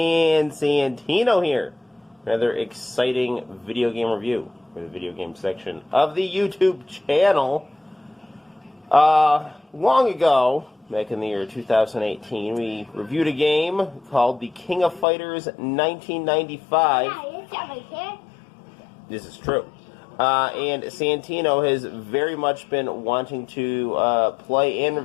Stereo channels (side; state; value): right; drops out; at 15.1 s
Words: Santino here. Another exciting video game review for the video game section of the YouTube channel. Long ago, back in the year 2018, we reviewed a game called the King of Fighters 1995. This is true. And Santino has very much been wanting to play and